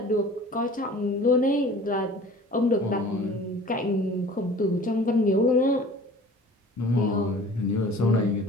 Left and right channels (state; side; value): normal; both; correlation 0.46